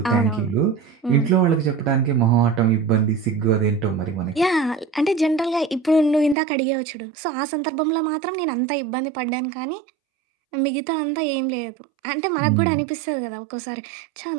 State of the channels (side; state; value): left; drops out; at 6.4 s